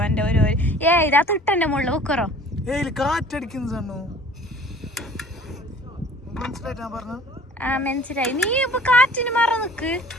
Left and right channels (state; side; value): normal; both; correlation 0.49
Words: എന്റെ ഒരു ഇതാ തൊട്ടെന്റെ മുകളിൽ വെക്കറോ മനസ്സിലായി. നീ ഇപ്പൊ കാറ്റിന് മറ നിക്ക്.